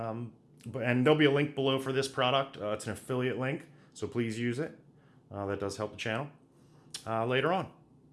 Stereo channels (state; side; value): identical; both; correlation 1.00